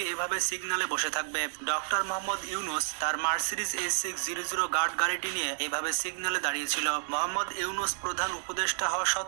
এভাবে সিগন্যালে বসে থাকবে। ডক্টর মোহাম্মদ ইউনূস তার মার্সিডিজ S600 গার্ড গাড়িটি নিয়ে এভাবে সিগন্যালে দাঁড়িয়েছিল। মোহাম্মদ ইউনূস প্রধান উপদেষ্টা হওয়া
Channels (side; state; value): left; silent; digital silence